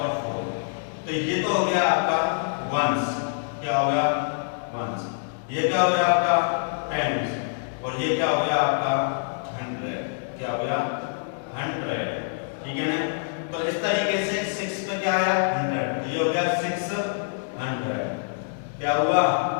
4 तो ये तो हो गया आपका वंस। क्या हो गया वंस। ये क्या हो गया आपका टेंस और ये क्या हो गया आपका 100। क्या हो गया 100। ठीक है ना। तो इस तरीके से 6 पे क्या आया 100 तो ये हो गया 600। क्या हुआ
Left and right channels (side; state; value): right; silent; digital silence